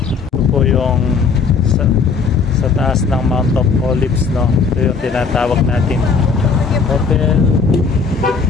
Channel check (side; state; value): right; quieter; 5.2 dB